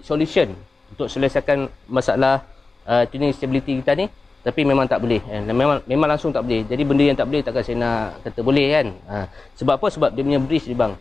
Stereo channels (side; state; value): right; quieter; 3.7 dB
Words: solution untuk selesaikan masalah tuning stability kita ni, tapi memang tak boleh kan. Memang langsung tak boleh. Jadi benda yang tak boleh takkan saya nak kata boleh kan. Sebab apa? Sebab dia punya bridge ni bang.